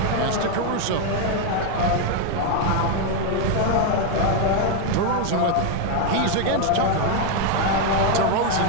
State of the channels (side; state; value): both; different; correlation 0.01